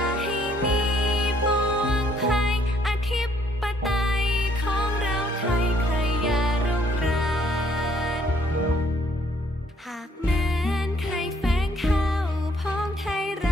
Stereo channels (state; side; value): normal; both; correlation 0.65